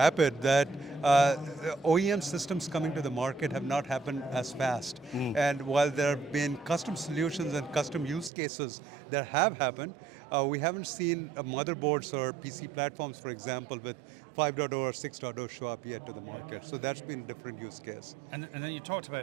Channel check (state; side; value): drops out; left; at 8.3 s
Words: that OEM systems coming to the market have not happened as fast. And while there have been custom solutions and custom use cases that have happened, we haven't seen motherboards or PC platforms, for example, with 5.0 or 6.0 show up yet to the market. So that's been a different use case. And then you talked